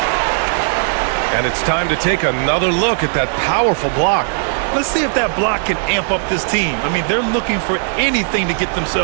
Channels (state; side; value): silent; left; digital silence